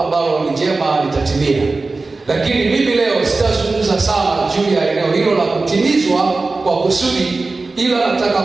ni jema litatimia. Lakini mimi leo sitazungumza sana juu ya eneo hilo la kutimizwa kwa kusudi, ila nataka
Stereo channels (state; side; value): quieter; left; 3.6 dB